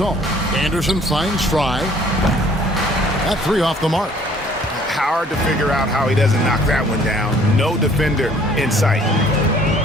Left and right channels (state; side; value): normal; both; correlation 0.57